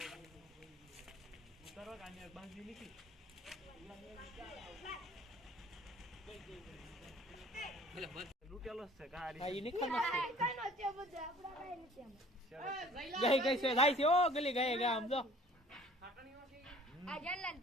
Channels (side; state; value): both; normal; correlation 0.52